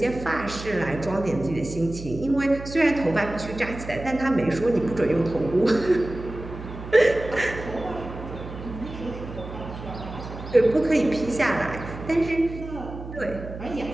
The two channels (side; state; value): right; noise; hum, 11 dB below the sound